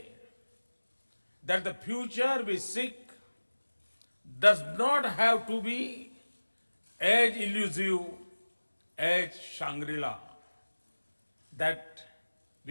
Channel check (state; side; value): inverted; both; correlation -1.00